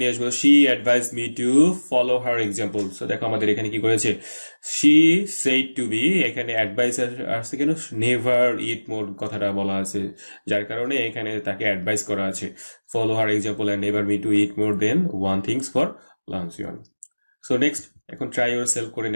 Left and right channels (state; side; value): inverted; both; correlation -1.00